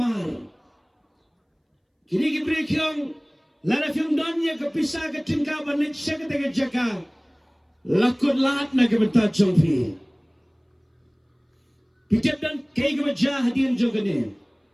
kini kibri kiong lara fiong don ya kepisah ke tingka ban lit syadu kena kejaka lakut lahat na kebentar jongpi pitip dan kei kebajah hadian jogane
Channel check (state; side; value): identical; both; correlation 1.00